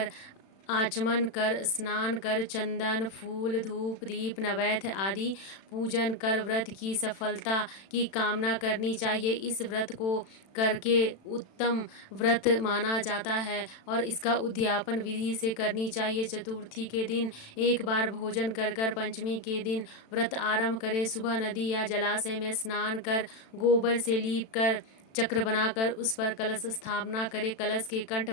आचमन कर स्नान कर चंदन फूल धूप दीप नैवेद्य आदि पूजन कर व्रत की सफलता की कामना करनी चाहिए। इस व्रत को करके उत्तम व्रत माना जाता है और इसका उद्यापन विधि से करनी चाहिए। चतुर्थी के दिन एक बार भोजन कर कर पंचमी के दिन व्रत आरंभ करें। सुबह नदी या जलाशय में स्नान कर गोबर से लीप कर चक्र बनाकर उस पर कलश स्थापना करें। कलश के कंठ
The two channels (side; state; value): right; late; 36 ms